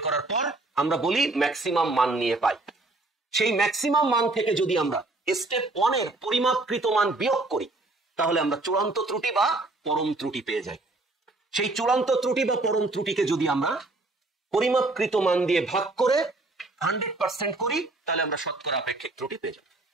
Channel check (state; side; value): quieter; left; 3.1 dB